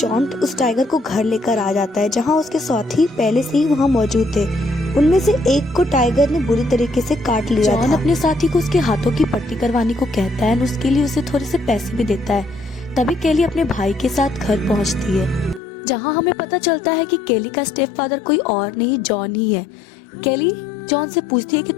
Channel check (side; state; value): right; drops out; at 15.6 s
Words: उस टाइगर को घर लेकर आ जाता है, जहाँ उसके साथी पहले से ही वहाँ मौजूद थे। उनमें से एक को टाइगर ने बुरी तरीके से काट लिया जॉन था। अपने साथी को उसके हाथों की पट्टी करवाने को कहता है और उसके लिए उसे थोड़े से पैसे भी देता है। तभी केली अपने भाई के साथ घर पहुंचती है, जहां हमें पता चलता है कि केली का स्टेप फादर कोई और नहीं जॉन ही है। केली जॉन से पूछती है कि